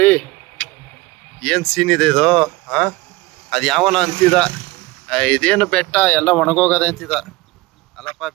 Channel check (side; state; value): left; quieter; 20.7 dB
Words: ಏನ್ ಸೀನ್ ಇದೆ ಇದು. ಅದು ಯಾವನ ಅಂತಿದ, ಇದೇನು ಬೆಟ್ಟ ಎಲ್ಲ ಒಣಗೋಗದೆ ಅಂತಿದ. ಅಲ್ಲಪ್ಪ,